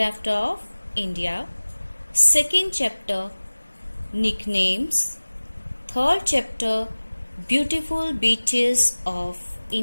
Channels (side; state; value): both; inverted; correlation -1.00